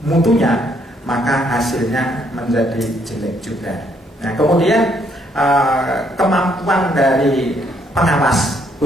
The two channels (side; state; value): both; normal; correlation 0.70